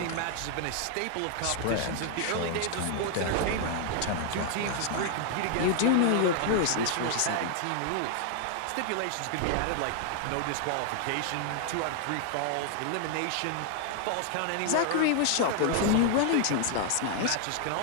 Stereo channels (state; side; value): different; both; correlation 0.00